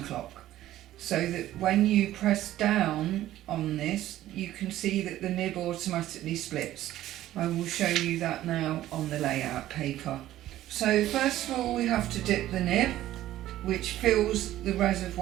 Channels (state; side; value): quieter; left; 13.9 dB